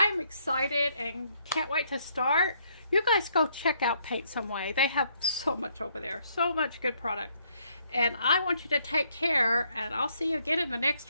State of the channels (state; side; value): inverted; both; correlation -0.70